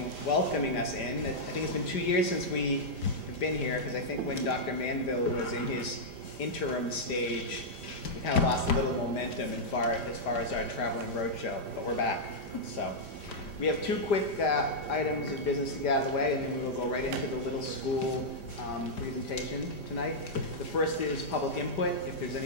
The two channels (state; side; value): late; right; 5.0 ms